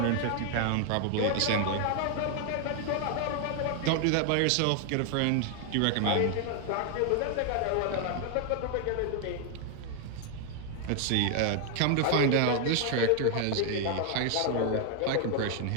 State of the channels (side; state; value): both; different; correlation 0.00